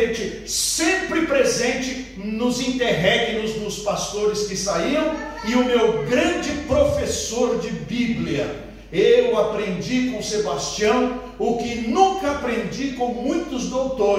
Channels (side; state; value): both; identical; correlation 1.00